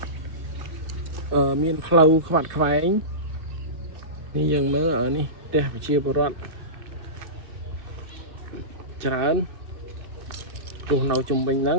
មានផ្លូវខ្វាត់ខ្វែងនេះយើងមើលនេះផ្ទះប្រជាពលរដ្ឋច្រើនរស់នៅជុំវិញហ្នឹង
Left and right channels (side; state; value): left; late; 2.6 ms